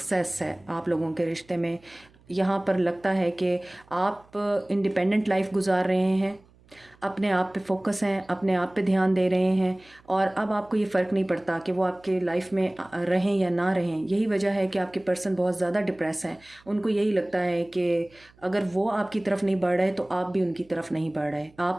है आप लोगों के रिश्ते में। यहाँ पर लगता है कि आप इंडिपेंडेंट लाइफ गुजार रहे हैं अपने आप पे फोकस हैं, अपने आप पे ध्यान दे रहे हैं, और अब आपको ये फ़र्क नहीं पड़ता कि वो आपके लाइफ में रहें या ना रहें। यही वजह है कि आपके पर्सन बहुत ज़्यादा डिप्रेस हैं। उनको यही लगता है कि अगर वो आपकी तरफ नहीं बढ़ रहे तो आप भी उनकी तरफ नहीं बढ़ रहे,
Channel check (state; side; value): noise; right; hum, 29 dB below the sound